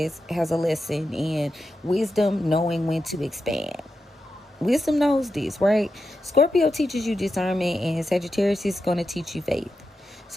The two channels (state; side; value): normal; both; correlation 0.89